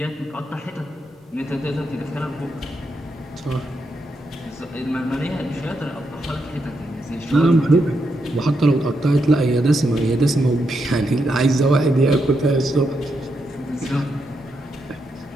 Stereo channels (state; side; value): normal; both; correlation 0.82